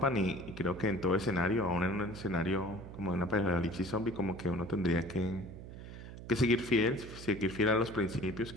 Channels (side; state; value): right; noise; hum, 12 dB below the sound